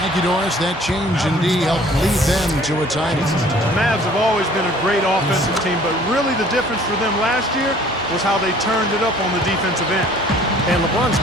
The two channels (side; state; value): both; normal; correlation 0.53